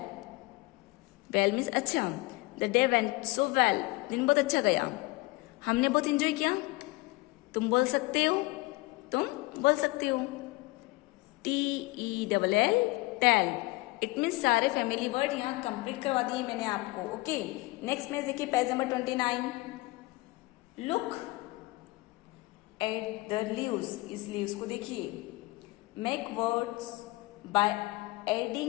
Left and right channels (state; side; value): quieter; right; 22.4 dB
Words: वेल मीन्स अच्छा। The day went so well, दिन बहुत अच्छा गया, हमने बहुत इंजॉय किया। तुम बोल सकते हो, तुम बोल सकते हो। TELL टेल, इट मीन्स सारे फैमिली वर्ड यहाँ कंप्लीट करवा दिए मैंने आपको। ओके, नेक्स्ट में देखिए page number 29। Look at the leaves, इस लीव्स को देखिए। Make words by